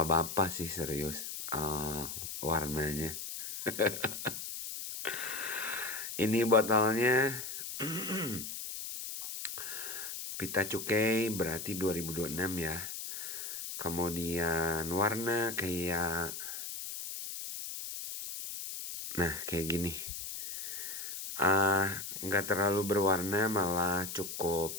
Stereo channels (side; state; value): left; noise; hiss, 7 dB below the sound